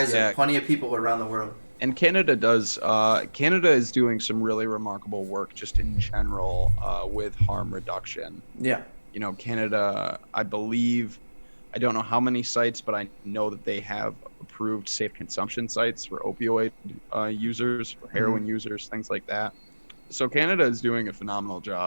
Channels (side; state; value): both; inverted; correlation -1.00